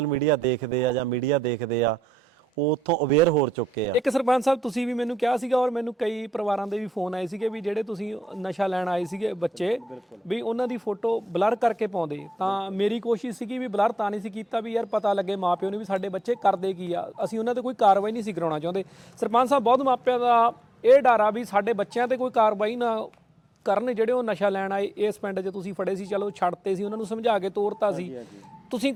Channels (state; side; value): normal; both; correlation 0.85